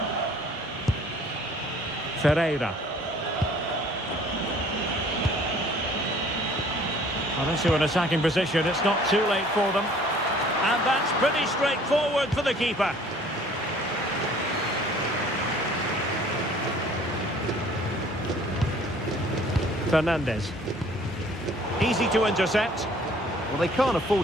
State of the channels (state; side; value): normal; both; correlation 0.54